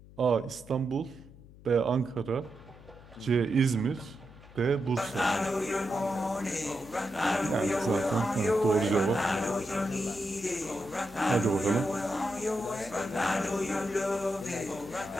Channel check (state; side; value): noise; left; hum, 21 dB below the sound